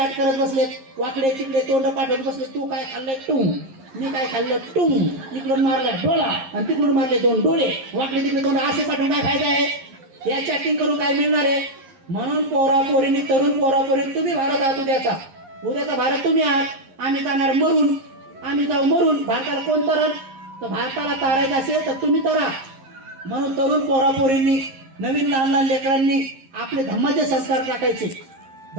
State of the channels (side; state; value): left; late; 11 ms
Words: करत बसलेत, वाकडे तिकडे तोंड पाठवत बसले, तू काय खाल्लंय टुंग, मी काय खाल्लं टुंग, इकडून मारलाय डोळा आणि तिकडून मारले 2 डोळे, वाकडे तिकडे तोंड असे पाठवून काय फायदा आहे. या चॅटिंग करून काय मिळणार आहे. म्हणून पोरापोरींनी, तरुण पोरापोरींनी, तुम्ही भारत आहात उद्याचा भारत तुम्ही आहात. आम्ही जाणार मरून, आम्ही जाऊ मरून. भारताला कोण तरण, तर भारताला तारायचं असेल तर तुम्ही तरा. म्हणून तरुण पोरापोरींनी, नवीन लहान लहान लेकरांनी आपले धम्माचे संस्कार टाकायचे.